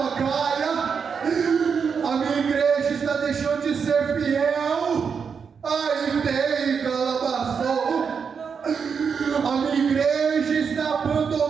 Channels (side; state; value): left; quieter; 6.2 dB